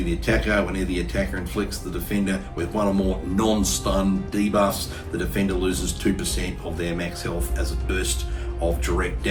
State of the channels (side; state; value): both; identical; correlation 1.00